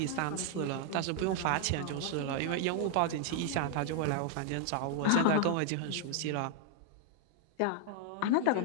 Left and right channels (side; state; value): both; different; correlation 0.00